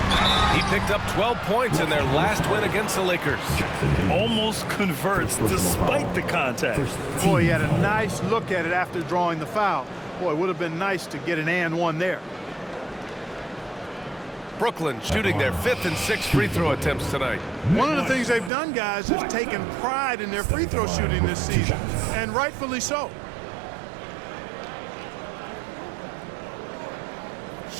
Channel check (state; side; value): drops out; left; at 18.5 s